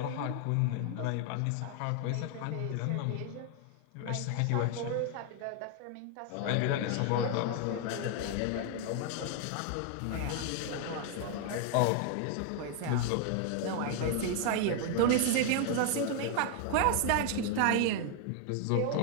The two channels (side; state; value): both; different; correlation 0.00